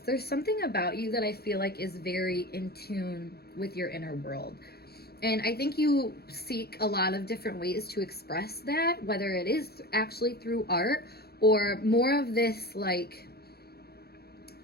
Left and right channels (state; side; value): late; right; 0.46 ms